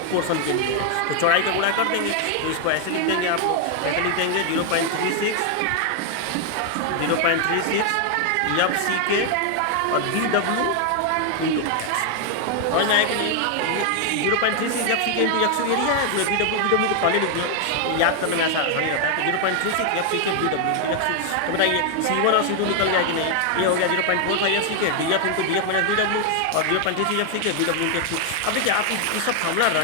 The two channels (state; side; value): different; both; correlation 0.00